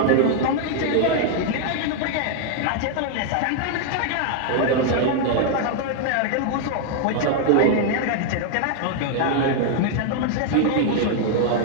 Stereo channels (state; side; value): different; both; correlation 0.00